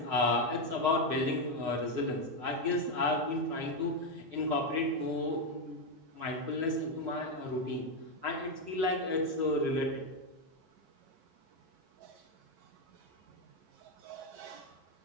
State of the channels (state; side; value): late; left; 5.9 ms